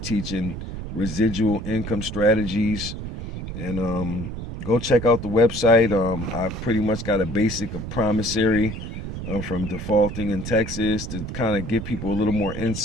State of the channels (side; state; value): right; noise; rumble, 7 dB below the sound